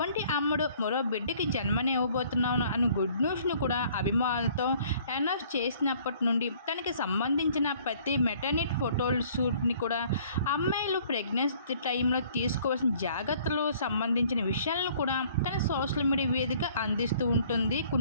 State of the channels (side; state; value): both; inverted; correlation -0.57